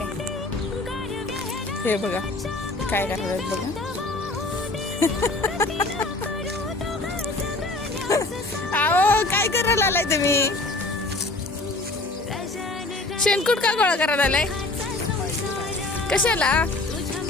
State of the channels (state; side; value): quieter; right; 3.0 dB